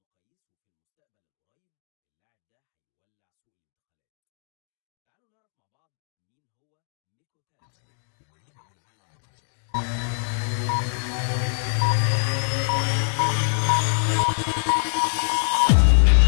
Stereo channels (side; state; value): right; silent; digital silence